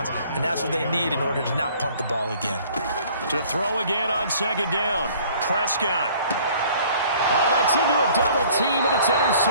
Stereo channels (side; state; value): both; inverted; correlation -0.54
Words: And that's what they need in order to not punt the ball again. To throw again on second down. Prescott. Oh, that's into a double team, and it's